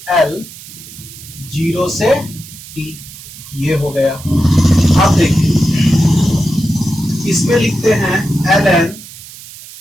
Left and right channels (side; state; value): right; noise; hiss, 16 dB below the sound